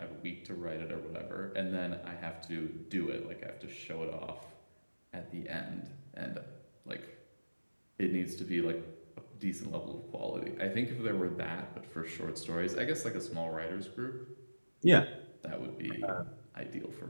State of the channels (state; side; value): inverted; both; correlation -1.00